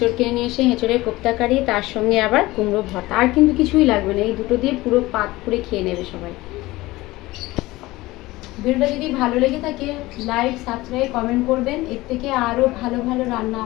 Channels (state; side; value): quieter; right; 19.3 dB